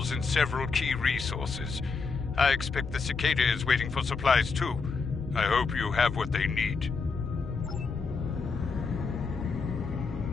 in several key resources. I expect the Cicada is waiting for supplies too. I hope you have what they need.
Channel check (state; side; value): quieter; right; 4.8 dB